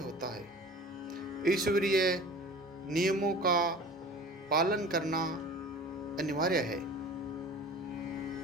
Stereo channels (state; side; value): normal; both; correlation 0.41